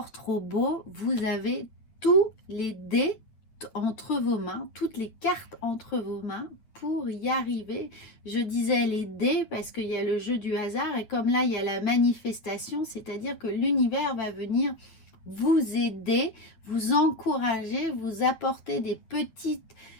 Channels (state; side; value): late; right; 9.0 ms